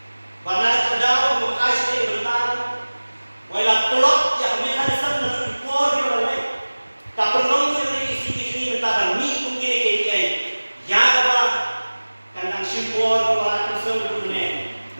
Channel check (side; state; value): both; inverted; correlation -1.00